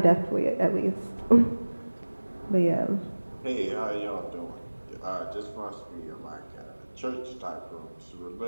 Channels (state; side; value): inverted; both; correlation -1.00